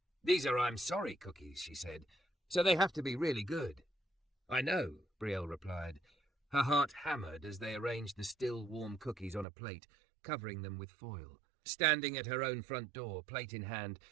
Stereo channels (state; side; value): drops out; left; at 9.5 s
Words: "These are I'm sorry cookies," she said, "so they have to be really good." "I know," Brielle replied. Her heart hammered as they arranged the still warm cookies on a plate, covering them with foil. Standing at her own front door, plate in hand,